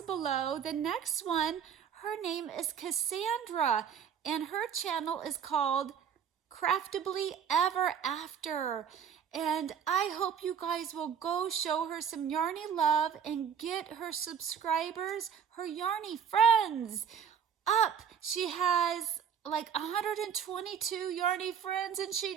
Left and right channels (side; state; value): left; quieter; 7.7 dB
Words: below. The next one, her name is Cassandra, and her channel is called Craftably Ever After. And I hope you guys will go show her some yarny love and get her subscribers, her yarny friends, up. She has like 122 yarny friends and